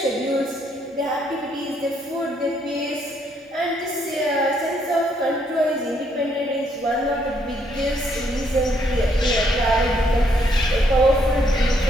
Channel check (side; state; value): both; normal; correlation 0.71